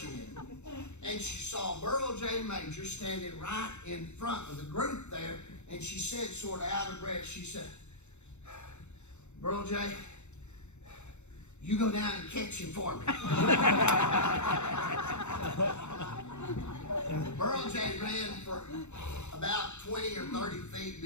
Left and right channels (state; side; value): late; right; 0.83 ms